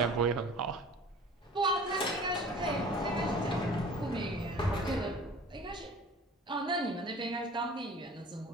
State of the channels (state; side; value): normal; both; correlation 0.44